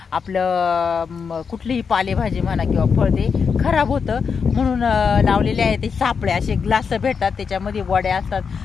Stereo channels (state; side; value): quieter; right; 5.9 dB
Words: आपलं कुठलीही पालेभाजी म्हणा किंवा फळ ते खराब होतं। म्हणून लावलेले आहे ते सापळे, असे ग्लास भेटतात, त्याच्यामध्ये वड्या असतात,